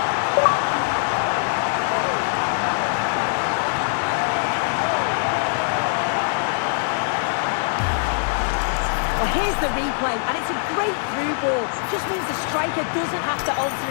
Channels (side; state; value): right; silent; digital silence